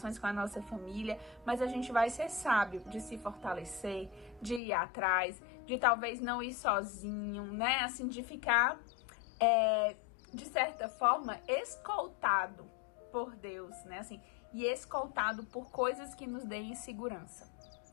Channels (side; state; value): right; drops out; at 4.6 s